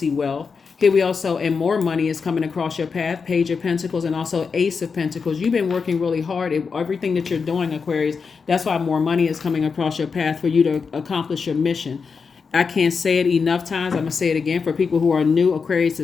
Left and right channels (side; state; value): right; quieter; 5.3 dB